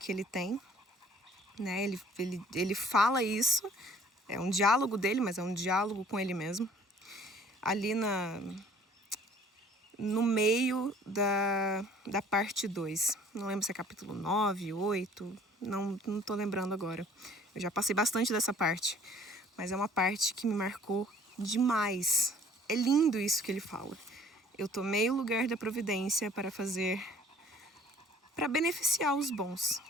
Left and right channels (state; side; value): normal; both; correlation 0.53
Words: ele tem, né? Ele fala isso, é um diálogo dele, mas é um diálogo com ele mesmo. Ali no meio da parte 2. Não lembro se é capítulo 9, 8, não tô lembrando agora. Eu já passei bastante dessa parte, mas é uma parte que me marcou demais. É lindo isso que ele fala. Eu tomei o lugar da providência para beneficiar os bons,